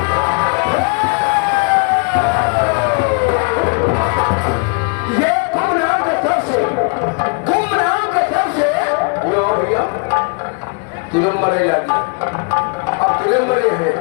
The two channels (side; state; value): right; quieter; 35.5 dB